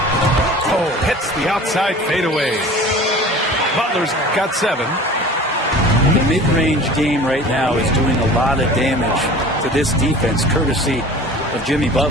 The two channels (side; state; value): both; normal; correlation 0.42